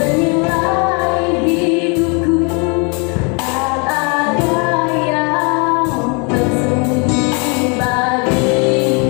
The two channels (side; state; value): right; quieter; 34.0 dB